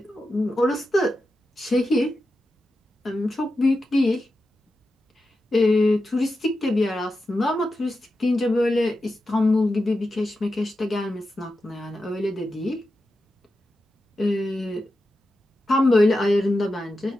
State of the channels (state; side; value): normal; both; correlation 0.90